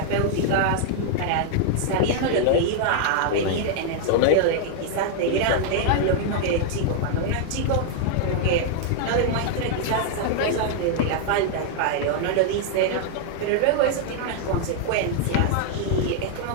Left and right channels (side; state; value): both; different; correlation 0.00